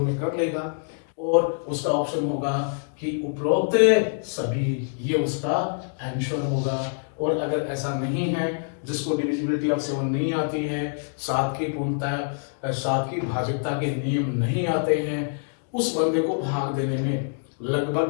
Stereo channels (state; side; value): silent; right; digital silence